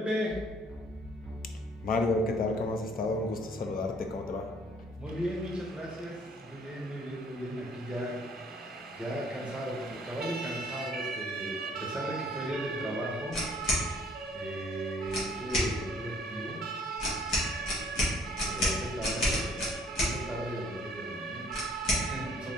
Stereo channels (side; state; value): both; normal; correlation 0.60